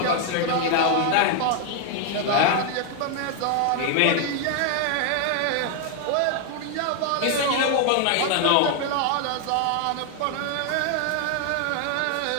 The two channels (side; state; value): both; different; correlation 0.00